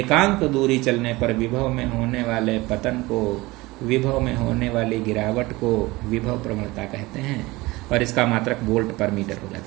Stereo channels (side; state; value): left; quieter; 21.1 dB